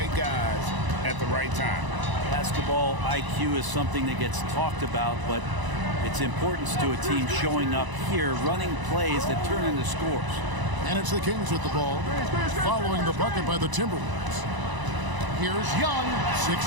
guys at the right time. Basketball IQ is something that gets talked about, but its importance to a team showing up here, running plays that turn into scores. And it's the Kings with the ball, following the bucket by the Timberwolves. Here's Young, 6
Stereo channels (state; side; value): late; left; 1.0 ms